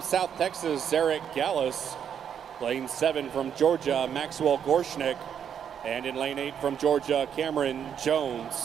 Texas, Zarek Gallus. Lane 7 from Georgia, Maxwell Gorshnick. And in lane 8 from Georgia, Cameron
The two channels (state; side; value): quieter; left; 8.3 dB